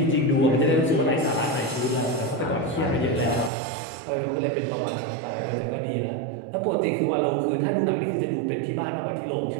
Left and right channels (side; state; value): left; drops out; at 3.5 s